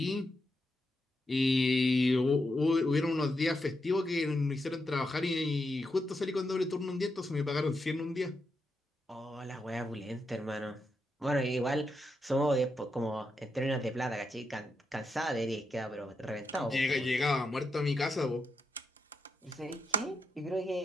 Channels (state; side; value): normal; both; correlation 0.84